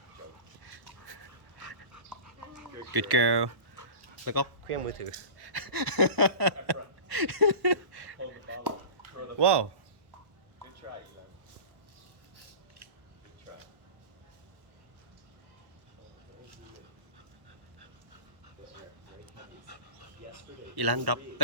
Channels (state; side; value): late; left; 1.1 ms